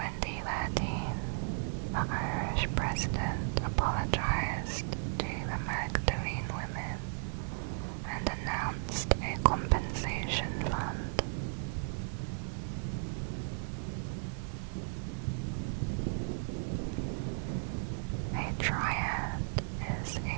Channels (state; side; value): silent; left; 54 dB below the other